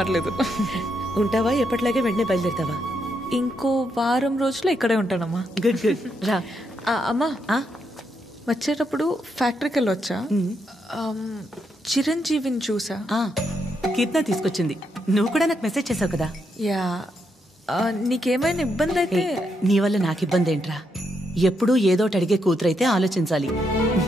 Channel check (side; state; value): both; normal; correlation 0.80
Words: ఉంటావా? ఎప్పటిలాగే వెంటనే బయలుదేరుతావా? ఇంకో వారం రోజులు ఇక్కడే ఉంటానమ్మా. Good good. రా. అమ్మా, వచ్చేటప్పుడు ఫ్యాక్టరీకి వెళ్ళొచ్చా? చిరంజీవిని చూసా. కీర్తన తీసుకొచ్చింది. నువ్వు కూడా నాకు మెసేజ్ చేసావు కదా? యా. నీకేమైనా ఇబ్బంది అయితే? నీ వల్ల నాకు ఇబ్బంది ఏంట్రా? ఎప్పుడూ ఏదోటి అడిగే కూతురైతే ఆలోచించాలి.